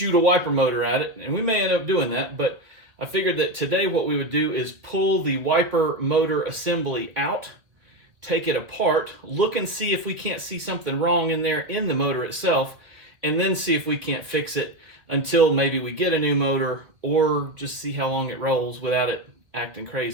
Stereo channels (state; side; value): late; left; 1.9 ms